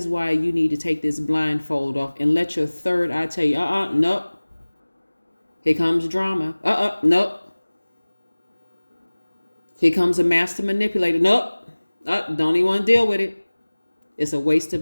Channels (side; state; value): both; inverted; correlation -1.00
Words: why you need to take this blindfold off and let your third eye tell you, nope. Here comes drama. Nope. Here comes a master manipulator. Nope. Don't even want to deal with it. It's a waste of